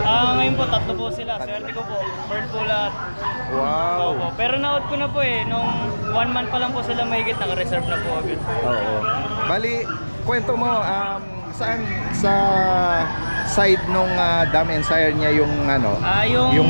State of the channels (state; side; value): inverted; both; correlation -1.00